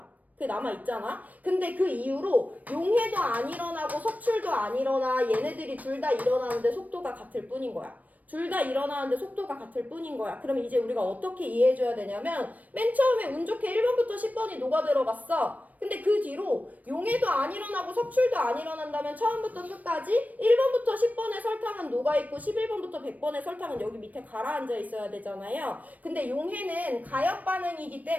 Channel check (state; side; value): late; left; 0.075 ms